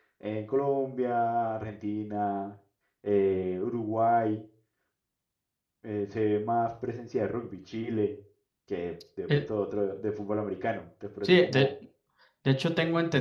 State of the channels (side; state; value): both; identical; correlation 1.00